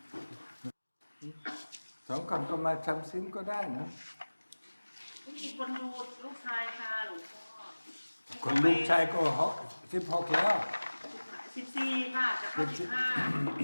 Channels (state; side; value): inverted; both; correlation -1.00